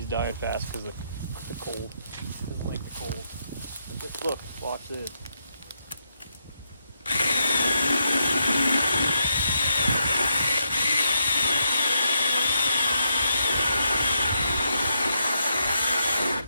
dying fast because of the cold. I don't like the cold. But just look, watch this.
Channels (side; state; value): both; inverted; correlation -0.81